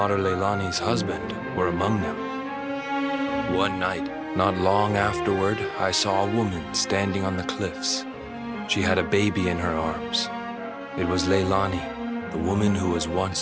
Leilani's husband were among them. One night, not long afterward, I saw a woman standing on the cliffs. She had a baby in her arms. It was Leilani, the woman who was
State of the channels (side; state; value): both; identical; correlation 1.00